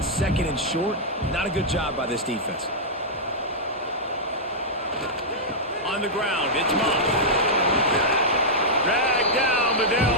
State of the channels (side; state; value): both; normal; correlation -0.09